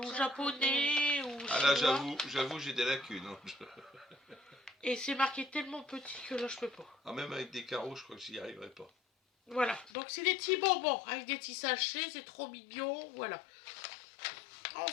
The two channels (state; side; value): drops out; right; at 9.9 s